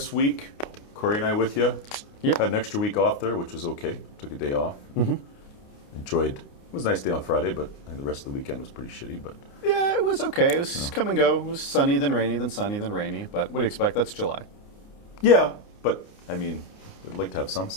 week. Corey and I with you. Yep. Had an extra week off there, which was okay. Took a day off. Enjoyed. It was a nice day on Friday, but I think the rest of the weekend was pretty shitty. But Yeah, it was okay. It was come and go. It was sunny, then rainy, then sunny, then rainy. But what do you expect? That's July. yeah, but I mean, we'd like to have some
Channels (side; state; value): right; late; 29 ms